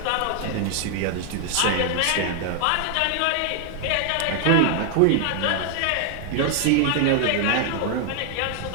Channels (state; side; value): different; both; correlation 0.00